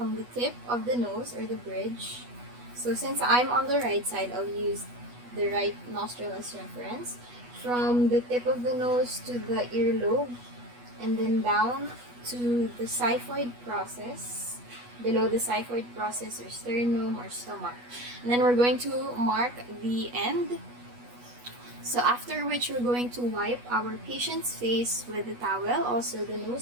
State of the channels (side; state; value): left; late; 8.2 ms